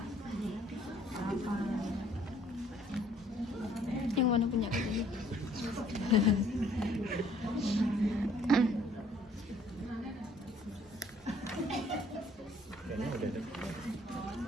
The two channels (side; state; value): both; normal; correlation 0.60